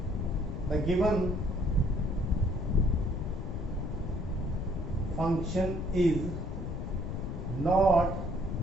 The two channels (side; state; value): left; noise; rumble, 5 dB below the sound